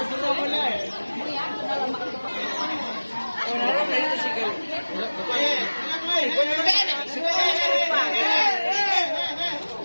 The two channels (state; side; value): inverted; both; correlation -1.00